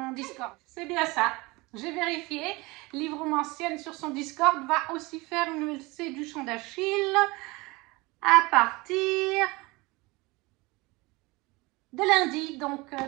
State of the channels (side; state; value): left; quieter; 23.7 dB